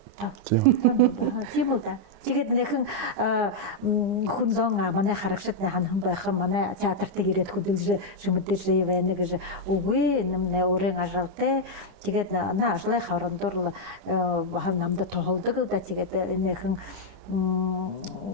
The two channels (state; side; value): late; left; 9.8 ms